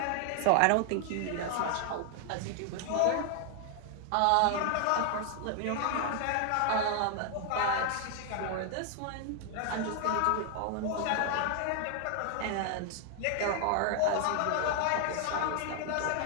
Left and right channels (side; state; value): both; different; correlation 0.00